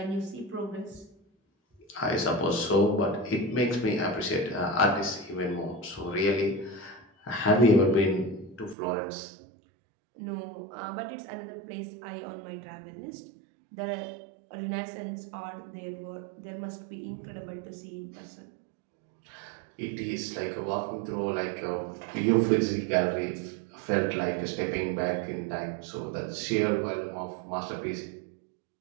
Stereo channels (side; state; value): left; drops out; at 8.8 s